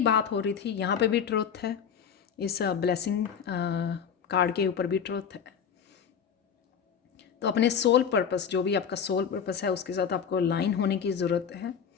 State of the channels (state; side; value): quieter; right; 7.4 dB